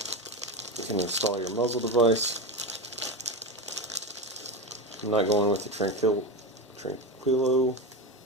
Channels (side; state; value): both; normal; correlation 0.19